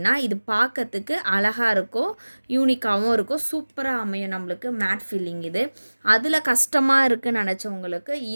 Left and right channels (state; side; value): inverted; both; correlation -1.00